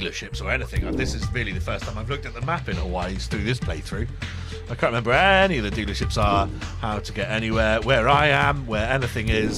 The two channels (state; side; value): identical; both; correlation 1.00